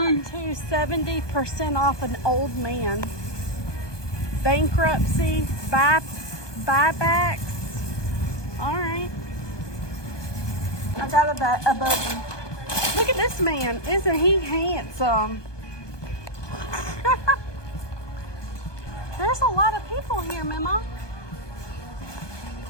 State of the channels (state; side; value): late; right; 1.2 ms